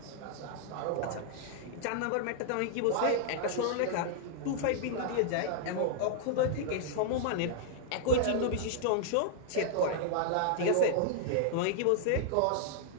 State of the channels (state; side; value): different; both; correlation -0.01